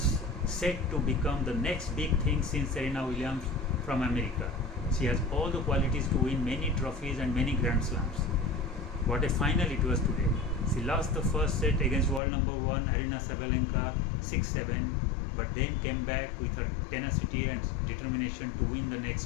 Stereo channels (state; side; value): drops out; right; at 12.2 s